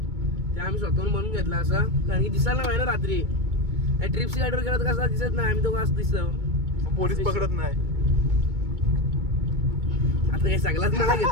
ते आम्ही स्वतःहून बनवून घेतला असा कारण की दिसायला नाही ना रात्री ट्रिपची गाडीवर गेला तर कसा दिसत नाही आम्ही तो असं दिसतो पोलीस पकडत नाही आता काही सगळाच मला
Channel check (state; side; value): late; left; 2.2 ms